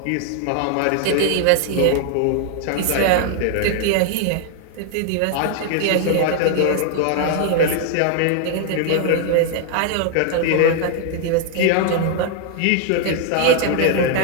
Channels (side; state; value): both; different; correlation 0.00